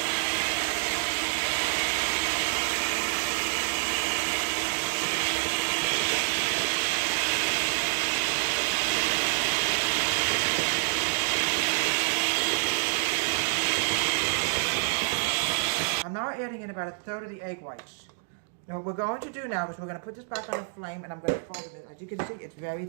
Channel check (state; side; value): silent; left; digital silence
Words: I'm now adding in about 1/3 of the egg whites. Now what we're going to do now is we're going to put this back on the flame, and I'm going to fold it. As you can see, it's very